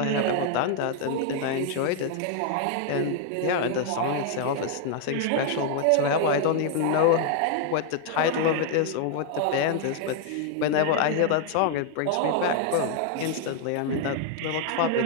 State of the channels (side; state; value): both; different; correlation 0.00